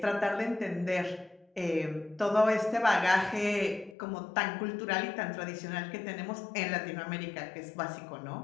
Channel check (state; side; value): drops out; right; at 4.0 s